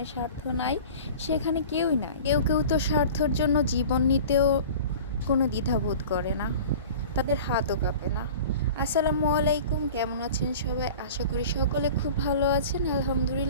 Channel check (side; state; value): both; inverted; correlation -0.40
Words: স্বার্থ নাই সেখানে কেউই নাই। কেউ কেউ তো স্বার্থর জন্য জীবন নিতেও কোনো দ্বিধাবোধ করে না, তাদের হাতও কাঁপে না। আসসালামু আলাইকুম, কেমন আছেন সবাই? আশা করি সকলে খুব ভালো আছেন।